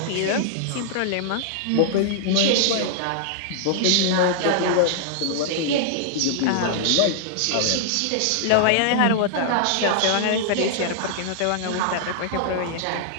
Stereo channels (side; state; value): both; different; correlation -0.01